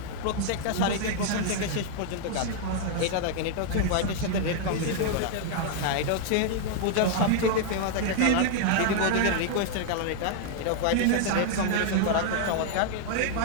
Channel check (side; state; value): both; different; correlation -0.01